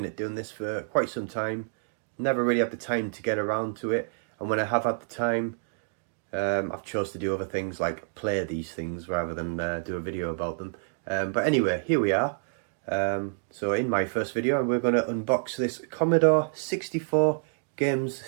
at doing this for quite some time, never really had the time to get around to it, and when I have had the time, I've chose to do other things like play these things rather than do a video about them. But anyway, here we are. So in my first video we're going to unbox this Commodore 64 games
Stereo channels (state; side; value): silent; left; digital silence